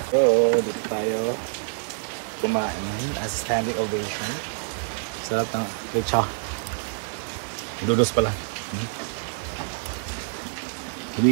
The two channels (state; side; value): silent; left; digital silence